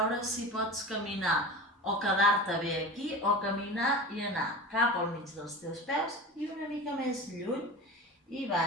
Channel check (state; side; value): normal; both; correlation 0.31